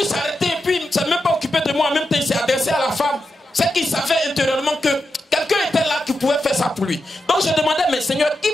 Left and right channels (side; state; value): both; normal; correlation 0.88